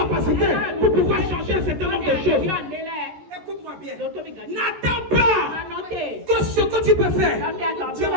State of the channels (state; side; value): late; left; 14 ms